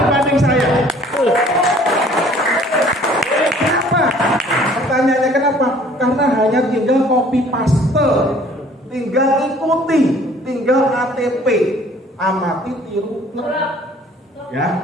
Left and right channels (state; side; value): normal; both; correlation 0.54